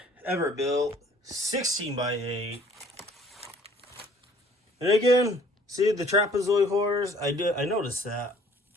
Everbuilt 16x8. And again, see the trapezoid hoarders? I noticed that.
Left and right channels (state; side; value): normal; both; correlation 0.56